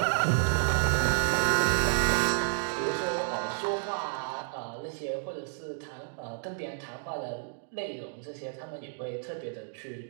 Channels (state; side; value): silent; left; digital silence